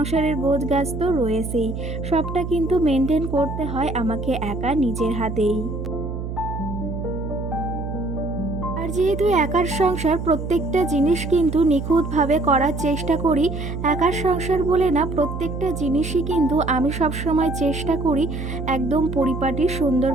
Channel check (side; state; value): right; noise; hum, 6 dB below the sound